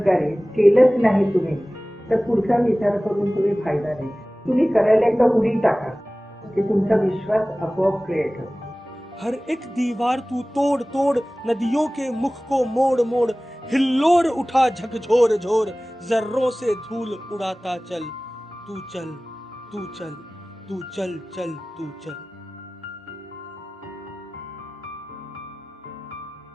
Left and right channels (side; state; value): both; normal; correlation 0.98